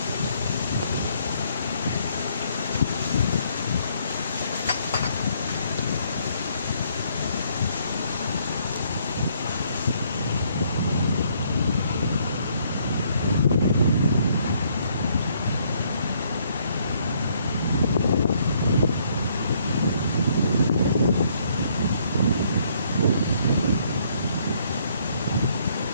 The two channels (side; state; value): both; inverted; correlation -0.67